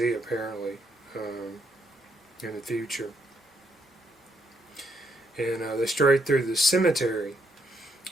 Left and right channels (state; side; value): normal; both; correlation 0.74